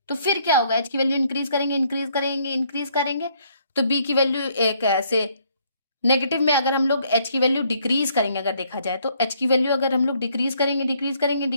तो फिर क्या होगा, एच की वैल्यू इंक्रीज करेंगे इंक्रीज करेंगे इंक्रीज करेंगे तो बी की वैल्यू एक ऐसे नेगेटिव में, अगर हम लोग एच की वैल्यू डिक्रीज करेंगे, अगर देखा जाए तो एच की वैल्यू अगर हम लोग डिक्रीज करेंगे डिक्रीज करेंगे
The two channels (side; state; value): both; inverted; correlation -0.67